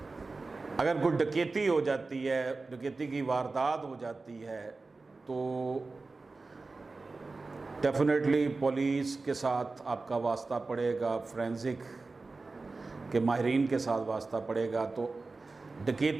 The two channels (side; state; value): left; quieter; 3.7 dB